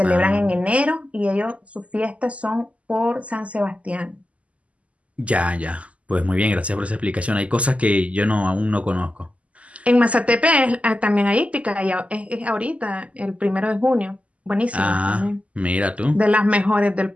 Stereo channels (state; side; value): late; left; 0.066 ms